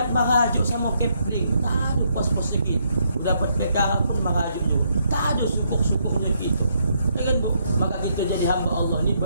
maraju sama Kepling, tak ada pos-posnya gitu. Dapat PK pun maraju juga. Tak ada syukur-syukurnya gitu. Kan Bu? Maka kita jadi hamba Allah ni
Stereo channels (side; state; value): both; inverted; correlation -0.74